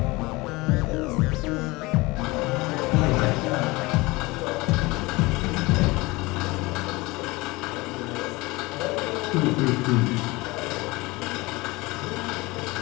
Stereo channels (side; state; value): right; quieter; 22.7 dB